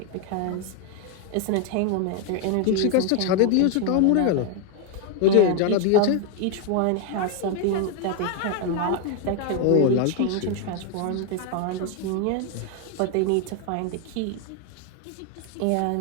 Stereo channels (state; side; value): different; both; correlation 0.01